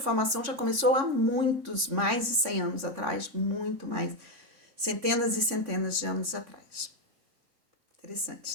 já começou há mais de 100 anos atrás, muito mais, centenas e centenas de anos atrás.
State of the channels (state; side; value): late; left; 3.5 ms